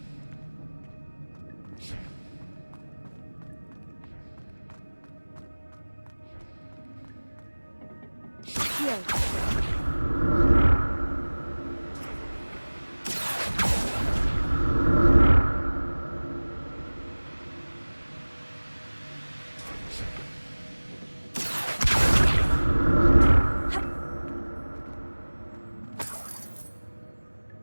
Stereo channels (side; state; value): both; inverted; correlation -1.00